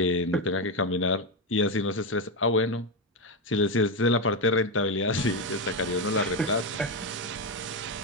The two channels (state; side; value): normal; both; correlation 0.09